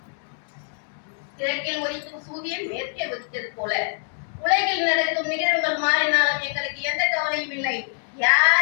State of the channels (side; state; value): right; silent; 60 dB below the other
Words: கிழக்கில் உதிக்கும் சூரியன் மேற்கே உதித்தது போல உலகில் நடக்கும் நிகழ்வுகள் மாறினாலும் எங்களுக்கு எந்த கவலையும் இல்லை.